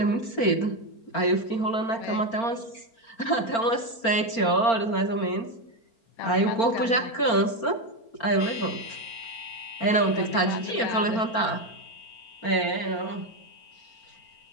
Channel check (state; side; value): late; right; 4.4 ms